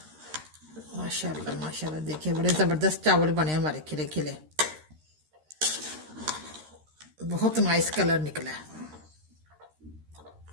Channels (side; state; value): left; late; 13 ms